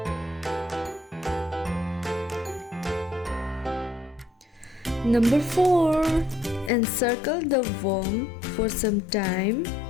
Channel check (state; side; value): drops out; right; at 6.7 s